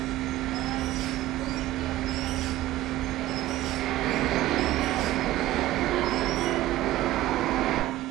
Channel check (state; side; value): quieter; left; 15.3 dB